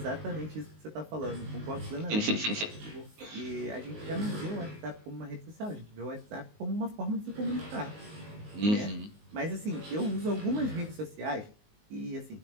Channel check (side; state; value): left; late; 19 ms